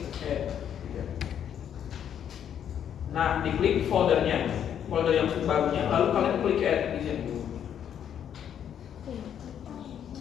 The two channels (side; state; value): right; quieter; 9.2 dB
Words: C. Nah, diklik foldernya, folder yang barunya, lalu kalian klik add di sini.